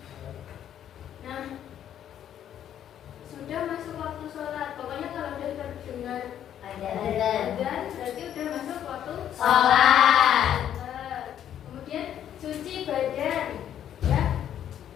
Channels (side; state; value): right; quieter; 10.3 dB